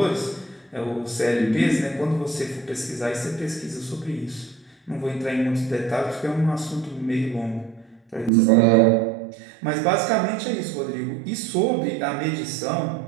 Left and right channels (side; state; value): left; drops out; at 8.3 s